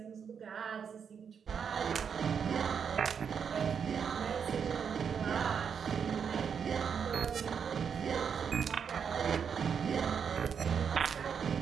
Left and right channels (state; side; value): quieter; left; 7.0 dB